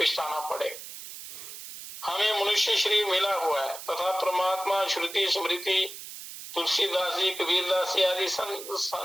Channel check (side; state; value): right; noise; hiss, 12 dB below the sound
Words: पड़ेगा। हमें मनुष्य शरीर मिला हुआ है तथा परमात्मा श्रुति स्मृति तुलसीदास जी कबीरदास जी आदि